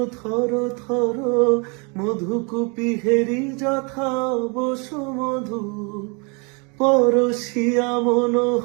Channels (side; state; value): left; quieter; 33.0 dB